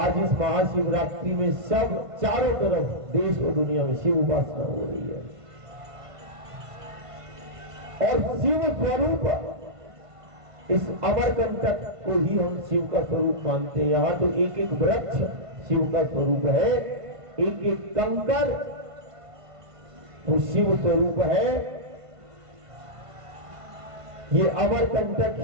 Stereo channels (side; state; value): left; late; 1.5 ms